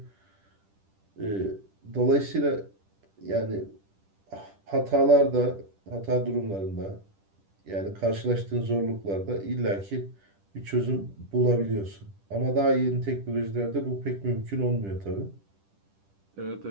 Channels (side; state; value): left; late; 10 ms